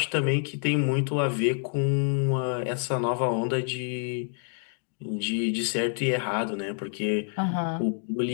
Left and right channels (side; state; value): right; silent; 60 dB below the other